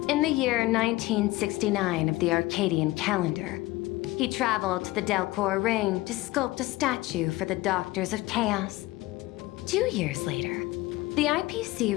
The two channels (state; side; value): quieter; right; 19.1 dB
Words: the year 1969 of the Arcadian calendar, he traveled to the Delcor Ring to sculpt a statue for the Doctors of Chaos. 2 years later, the IPC